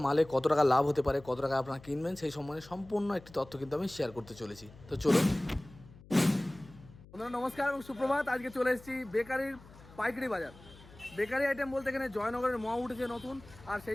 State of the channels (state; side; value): noise; left; hum, 21 dB below the sound